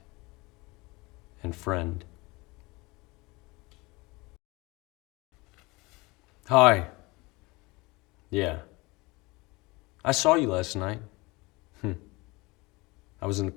and friend. Hi. Yeah. I saw you last night. I was in the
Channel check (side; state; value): right; quieter; 24.0 dB